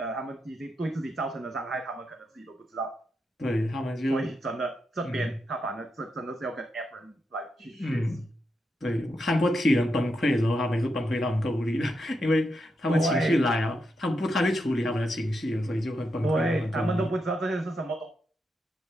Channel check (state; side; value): normal; both; correlation 0.84